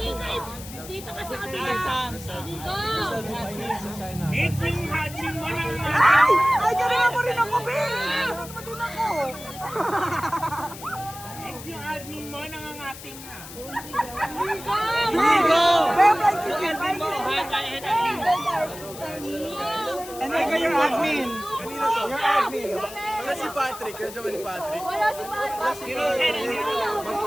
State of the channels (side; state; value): left; noise; hiss, 14 dB below the sound